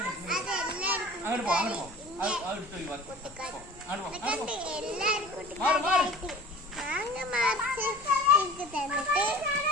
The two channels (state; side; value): normal; both; correlation 0.42